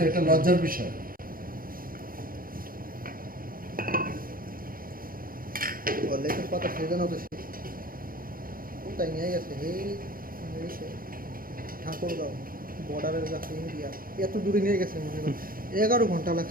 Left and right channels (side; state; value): left; late; 0.42 ms